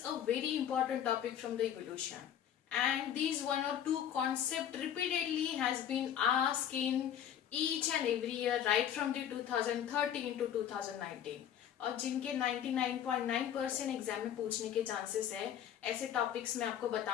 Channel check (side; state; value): right; quieter; 9.8 dB